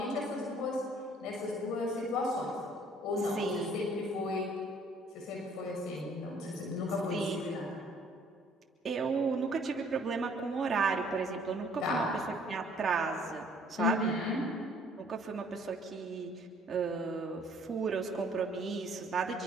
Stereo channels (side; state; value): both; normal; correlation 0.58